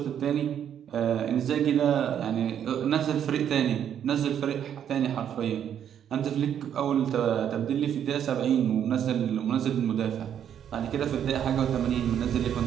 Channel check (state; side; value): quieter; left; 9.3 dB